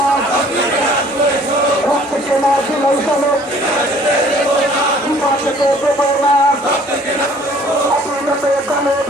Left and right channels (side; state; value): both; normal; correlation 0.55